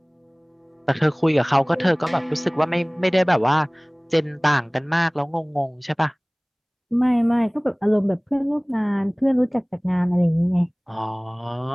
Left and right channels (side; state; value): both; identical; correlation 1.00